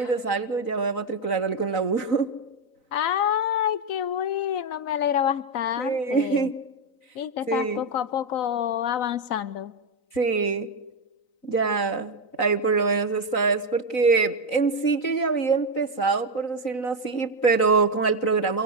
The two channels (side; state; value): right; late; 3.9 ms